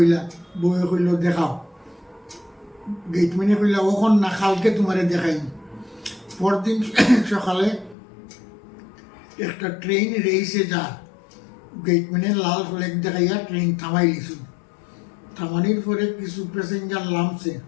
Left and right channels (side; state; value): right; drops out; at 8.0 s